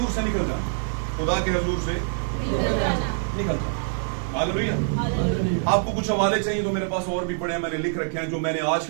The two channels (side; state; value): left; silent; digital silence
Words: से निकल जाना, खुदा के हुजूर से निकल जाना। हालेलुया। आपको कुछ हवाले चाहिए तो मेरे पास और भी पड़े हैं, मैंने लिख रखे हैं, जो मैंने आज